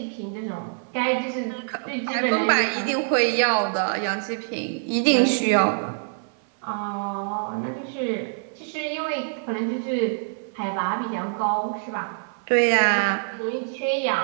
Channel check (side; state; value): left; silent; 57 dB below the other